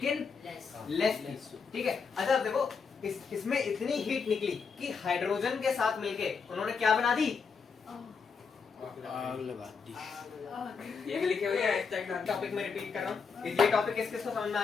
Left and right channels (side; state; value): right; quieter; 5.5 dB